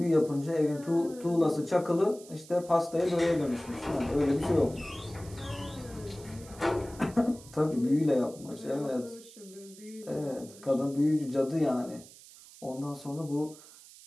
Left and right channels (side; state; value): right; noise; hiss, 20 dB below the sound